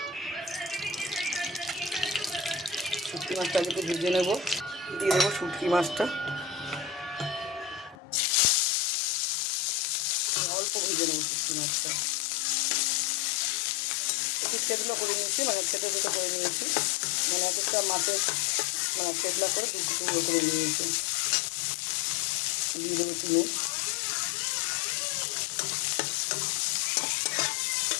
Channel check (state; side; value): drops out; right; at 8.0 s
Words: শুটকি মাছটা আগে একটু ভেজে নেবো। দিয়ে দেবো শুটকি মাছটা, অল্প ভেজে নেবো শুটকি মাছটা। একটু থেতলা করে নিয়েছি, মানে থেতো করে নিয়েছি, মানে এক একটা মাছের মানে থেতলা করে টুকরো করে নিয়েছি। দিয়ে দেবো একটু নুন,